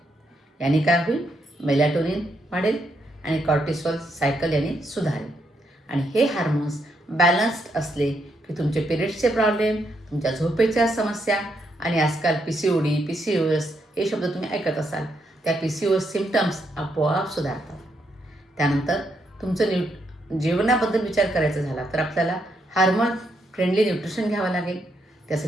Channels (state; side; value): normal; both; correlation 0.78